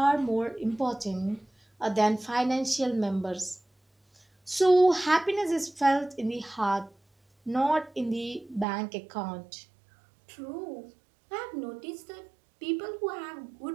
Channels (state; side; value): drops out; left; at 8.7 s